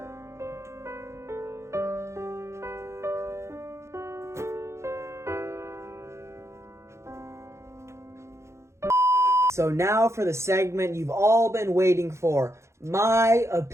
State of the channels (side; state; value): left; late; 0.14 ms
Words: So now for the segment you've all been waiting for, my